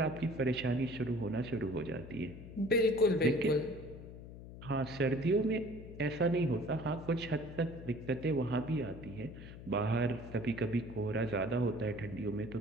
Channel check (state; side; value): noise; left; hum, 13 dB below the sound